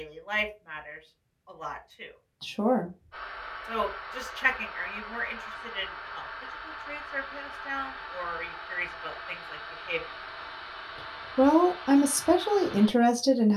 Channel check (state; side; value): identical; both; correlation 1.00